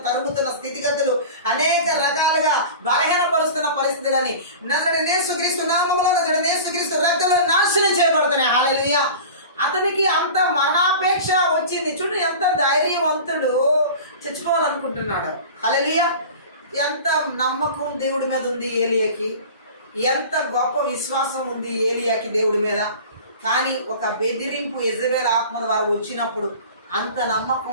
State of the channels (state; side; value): inverted; both; correlation -0.36